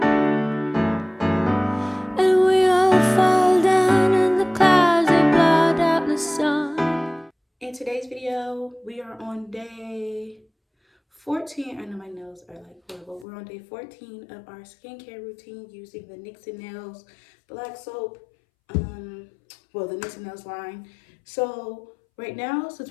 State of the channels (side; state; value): right; drops out; at 13.2 s